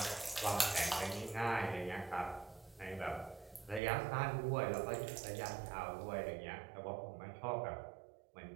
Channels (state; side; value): drops out; left; at 3.8 s